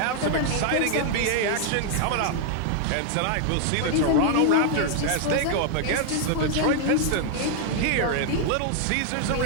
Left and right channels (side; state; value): both; different; correlation 0.00